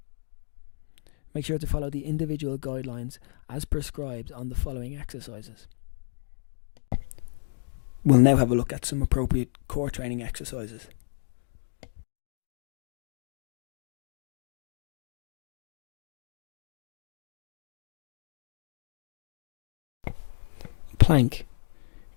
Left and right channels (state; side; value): silent; right; digital silence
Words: Make sure to follow the individual guidelines as prescribed on the following exercises. We'll now have a look at some appropriate core training exercises. Plank.